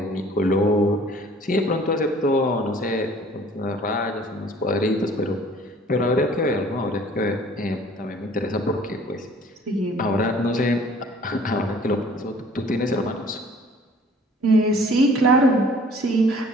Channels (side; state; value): both; normal; correlation 0.53